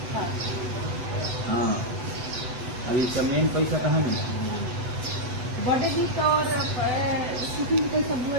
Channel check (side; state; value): left; late; 8.0 ms